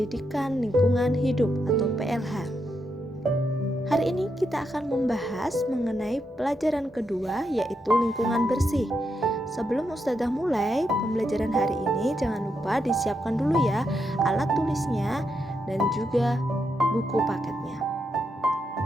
Lingkungan Hidup atau PLH. Hari ini kita akan membahas mengenai pelajaran kedua, yaitu lingkungan bersih. Sebelum Ustazah mulai pembelajaran hari ini, jangan lupa disiapkan dulu ya alat tulisnya dan juga buku paketnya.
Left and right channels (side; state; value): both; normal; correlation 0.82